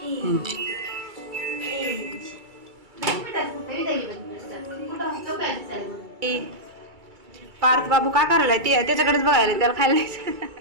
पार्थ बाबू काय करायला ते त्याच्याकडेच बघायला त्याला खायला द्यायचं.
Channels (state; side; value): late; left; 2.3 ms